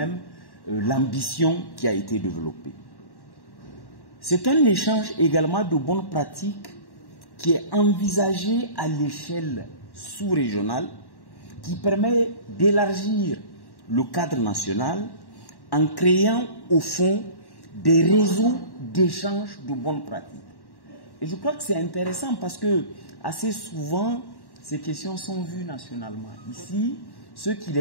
l'ambition qui a été développée. C'est un échange également de bonnes pratiques qui est envisagé à l'échelle sous-régionale, qui permet d'élargir le cadre national en créant au fond des réseaux d'échange de bonnes pratiques. Et je crois que c'est intéressant parce que assez souvent, ces questions sont vues nationalement. Ici, ceux qui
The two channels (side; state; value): right; late; 1.1 ms